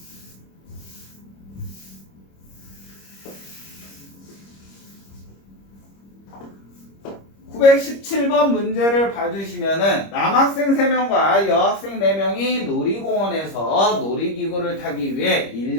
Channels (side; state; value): right; late; 25 ms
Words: (917번) 문제를 봐주시면은 남학생 3명과 여학생 4명이 놀이공원에서 놀이기구를 타기 위해